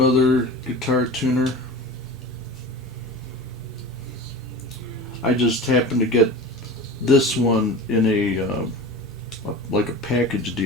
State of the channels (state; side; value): normal; both; correlation 0.35